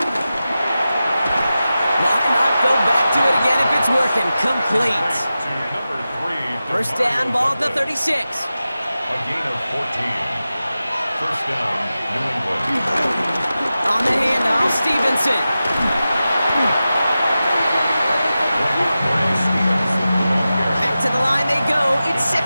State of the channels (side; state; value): both; inverted; correlation -0.94